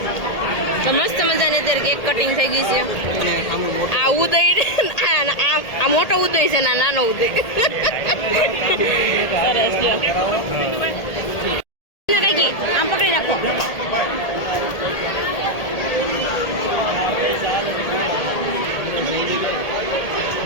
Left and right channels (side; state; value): right; late; 1.8 ms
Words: તો મસ્ત મજાની અત્યારે કેક કટિંગ થઈ ગઈ છે. આ ઉદય આ મોટો ઉદય છે ને આ નાનો ઉદય. સરસ લ્યો. આમ પકડી નાખો.